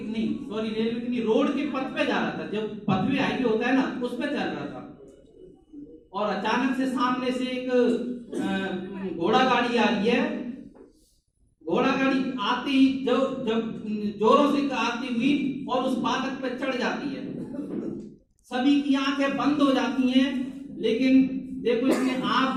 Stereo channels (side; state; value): both; identical; correlation 1.00